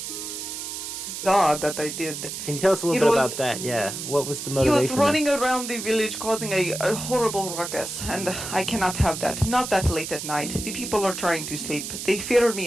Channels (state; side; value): noise; right; hiss, 7 dB below the sound